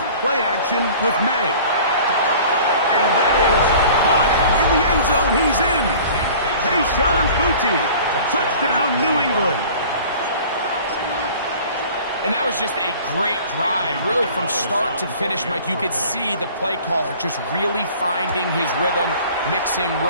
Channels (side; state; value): both; inverted; correlation -0.46